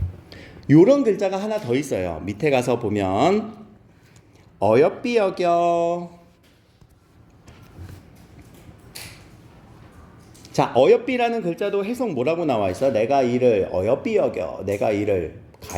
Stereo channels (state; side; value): identical; both; correlation 1.00